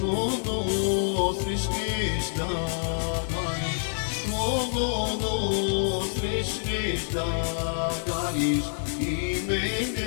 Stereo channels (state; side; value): silent; right; digital silence